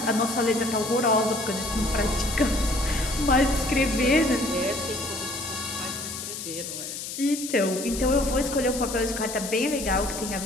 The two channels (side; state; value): left; noise; hiss, 7 dB below the sound